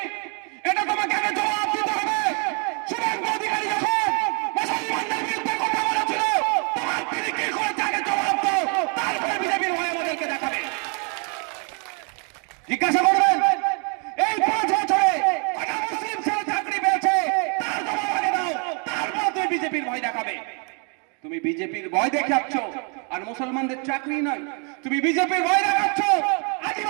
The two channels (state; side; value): quieter; left; 37.0 dB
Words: এটা তোমাকে আগে জবাব দিতে হবে। শুভেন্দু অধিকারী যখন মুসলমানদের বিরুদ্ধে কথা বলেছিল, তোমার তিনি কি করেছে আগে জবাব দাও, তারপরে বিজেপির ভয় আমাদেরকে দেখাবে। জিজ্ঞাসা করবেন এই 5 বছরে কটা মুসলিম ছেলে চাকরি পেয়েছে, তার জবাব আগে দাও, তারপর তুমি বিজেপির ভয় দেখাবে। তুমি বিজেপির ভয় দেখাচ্ছ আর মুসলমানদের চাকরি নয়, তুমি বিজেপির ভয় দেখাচ্ছ,